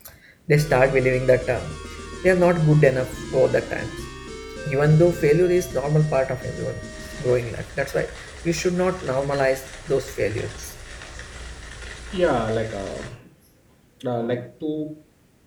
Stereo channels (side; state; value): both; identical; correlation 1.00